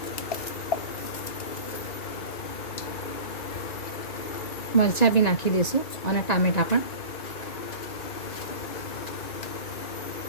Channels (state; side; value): late; right; 1.9 ms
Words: મરચાં બી નાખી દઈશું અને ટામેટાં પણ.